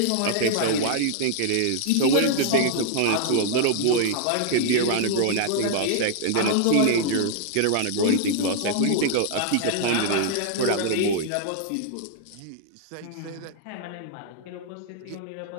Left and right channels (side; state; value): both; different; correlation 0.00